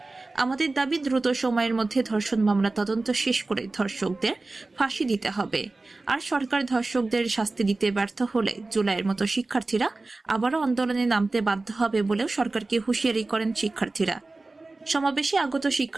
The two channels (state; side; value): quieter; left; 3.3 dB